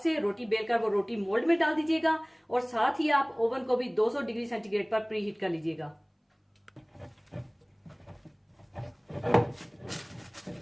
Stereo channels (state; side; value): identical; both; correlation 1.00